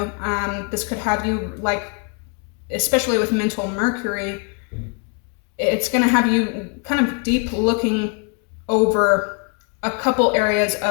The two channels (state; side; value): quieter; right; 37.6 dB